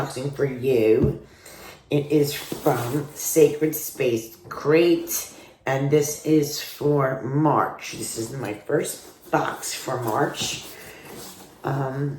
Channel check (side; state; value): both; identical; correlation 1.00